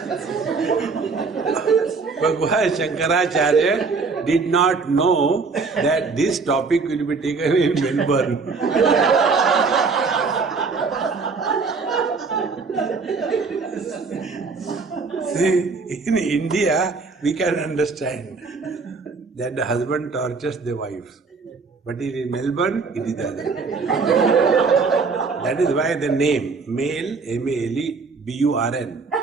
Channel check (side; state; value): left; quieter; 4.5 dB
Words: Bhagavan Shankaracharya did not know that this topic will be taken in Melbourne. See, in India, we can understand that the husband tortures the wife. But in Melbourne, it is the other. That is why the name, male, M-A-L-E, B-U-R-N.